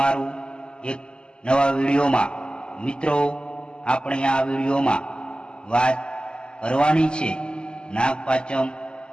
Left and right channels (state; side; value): late; right; 0.048 ms